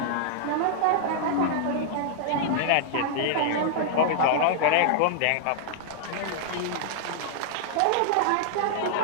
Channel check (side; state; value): both; different; correlation -0.01